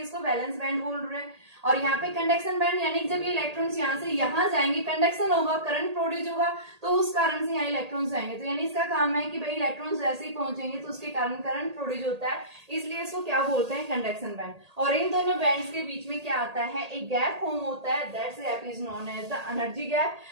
इसको वैलेंस बैंड बोल रहे हैं। और यहाँ पे कंडक्शन बैंड, यानी जब ये इलेक्ट्रॉन्स यहाँ से यहाँ जाएंगे, कंडक्शन होगा, करंट प्रोड्यूस होगा, तो उस कारण से यहाँ इलेक्ट्रॉन्स जाएंगे। तो यानी इसका काम है कि भाई इलेक्ट्रॉन्स जैसे ही पहुंचेंगे तो उसके कारण करंट प्रोड्यूस होता है, इसलिए इसको क्या बोलते हैं, कंडक्शन बैंड। और इन दोनों बैंड्स के बीच में क्या आता है, एक गैप फॉर्म होता है, that's gap is known as the energy gap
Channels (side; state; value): left; late; 1.8 ms